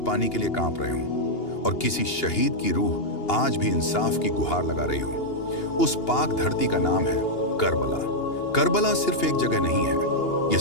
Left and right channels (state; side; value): late; right; 2.8 ms